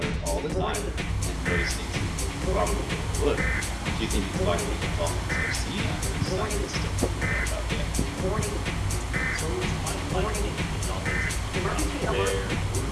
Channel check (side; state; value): both; identical; correlation 1.00